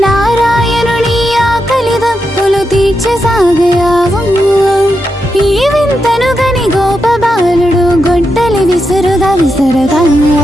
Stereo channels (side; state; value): both; normal; correlation 0.86